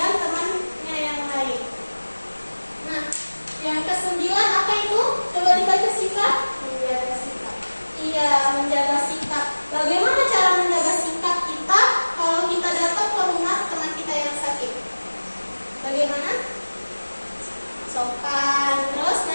temannya yang lain. Nah, yang ke-9 apa itu? Coba dibaca sikap. Menjaga sikap. Iya, menjaga sikap. Bagaimana cara menjaga sikap kita kalau kita datang ke rumah teman kita yang sakit? Bagaimana? Sopan. Terus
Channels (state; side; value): inverted; both; correlation -1.00